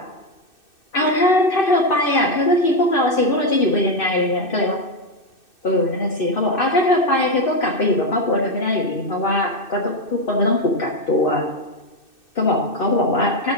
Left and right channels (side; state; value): right; late; 2.6 ms